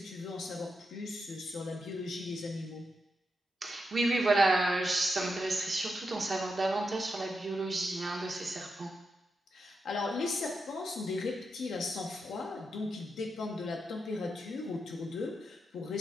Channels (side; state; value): both; normal; correlation 0.86